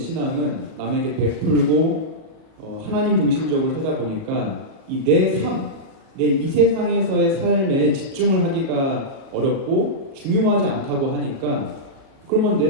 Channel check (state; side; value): late; left; 37 ms